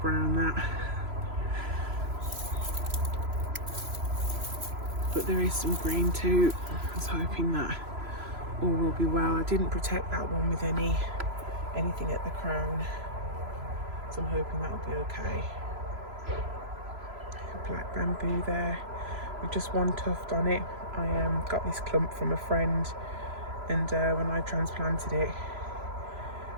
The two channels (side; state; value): left; late; 3.0 ms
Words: brown, that. But there is some green too. I was hoping that all will be well. I didn't protect that one with anything at the crown, so I'm hoping that will be okay. Black bamboo there with just one tuft on it. I got this clump from a friend, and when I transplanted it,